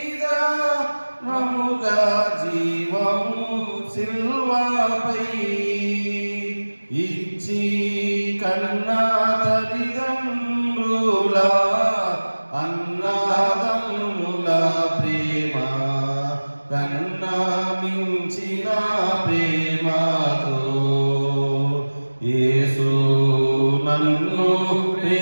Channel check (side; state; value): both; inverted; correlation -1.00